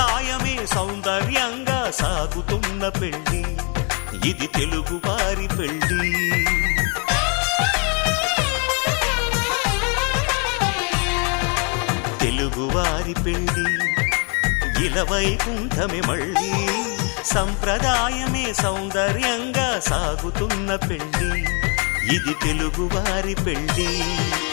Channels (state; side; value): quieter; right; 36.1 dB